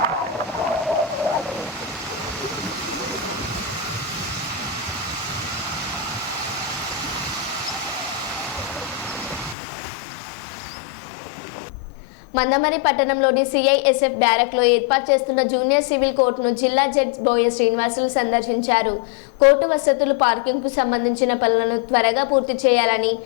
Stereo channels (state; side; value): drops out; right; at 9.6 s